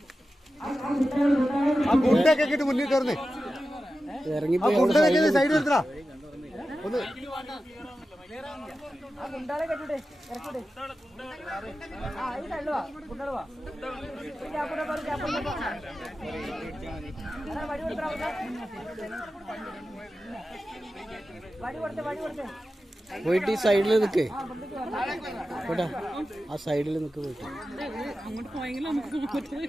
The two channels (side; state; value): both; normal; correlation 0.93